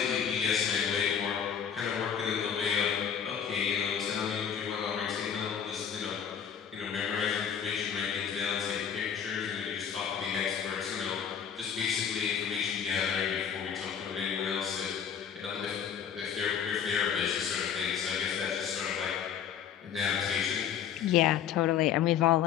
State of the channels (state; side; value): quieter; right; 8.2 dB